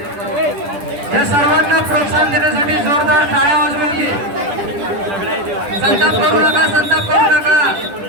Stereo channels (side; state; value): left; late; 10 ms